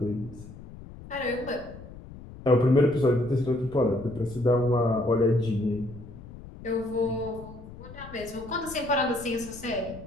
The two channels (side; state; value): left; noise; rumble, 16 dB below the sound